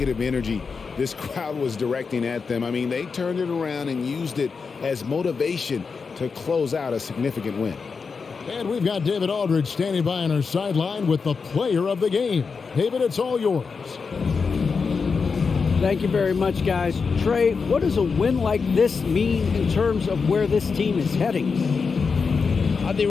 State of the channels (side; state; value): right; quieter; 5.2 dB